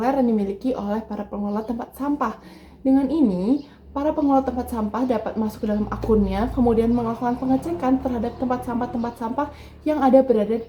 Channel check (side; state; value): both; identical; correlation 1.00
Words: yang dimiliki oleh para pengelola tempat sampah. Dengan ini, para pengelola tempat sampah dapat masuk ke dalam akunnya, kemudian melakukan pengecekan terhadap tempat sampah yang ada berada